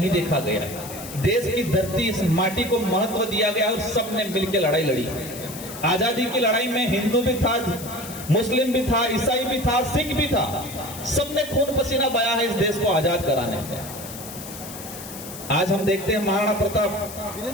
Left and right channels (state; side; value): noise; left; hiss, 12 dB below the sound